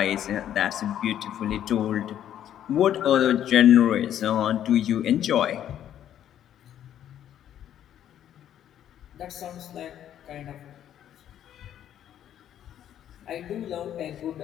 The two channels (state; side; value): quieter; right; 10.7 dB